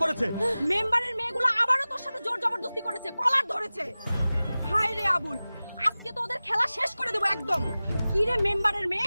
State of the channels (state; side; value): inverted; both; correlation -0.97